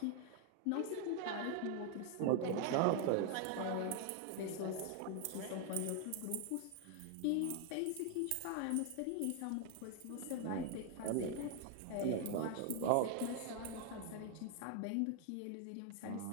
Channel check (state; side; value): different; both; correlation 0.00